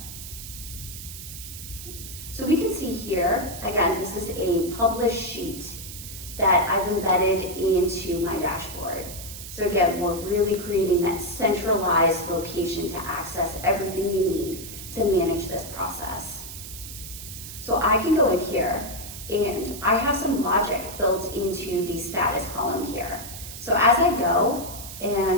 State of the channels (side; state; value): right; noise; hiss, 11 dB below the sound